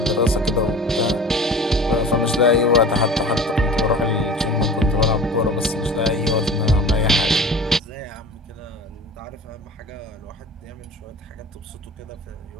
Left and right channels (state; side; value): normal; both; correlation 0.39